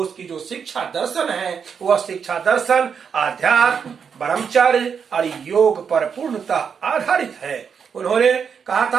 की जो शिक्षा दर्शन है वह शिक्षा दर्शन आध्यात्म, ब्रह्मचर्य और योग पर पूर्णतः आधारित है। उन्होंने कहा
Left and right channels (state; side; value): quieter; left; 6.7 dB